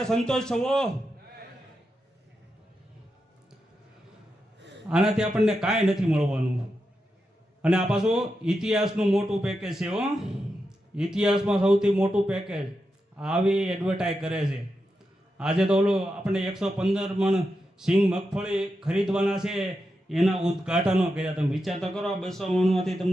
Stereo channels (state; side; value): normal; both; correlation 0.88